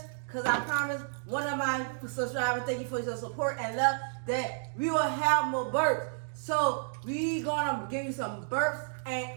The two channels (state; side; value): silent; left; digital silence